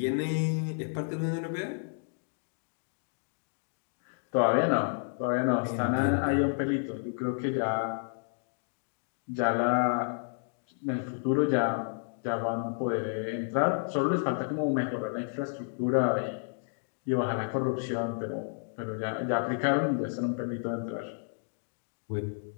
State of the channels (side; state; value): right; silent; digital silence